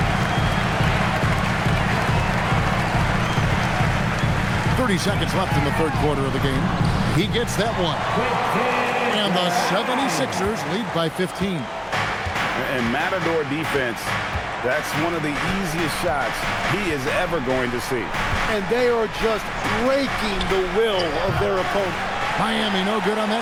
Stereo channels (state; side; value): identical; both; correlation 1.00